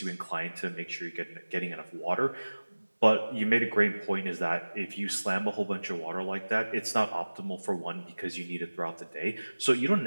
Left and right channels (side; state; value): both; inverted; correlation -1.00